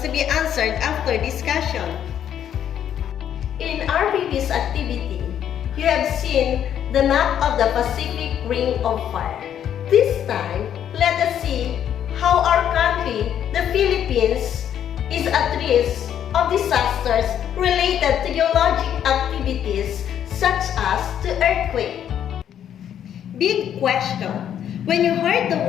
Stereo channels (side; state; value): right; quieter; 9.7 dB